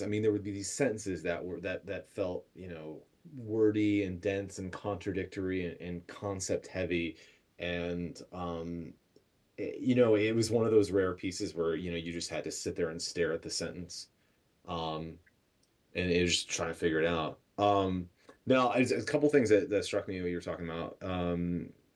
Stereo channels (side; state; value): both; identical; correlation 1.00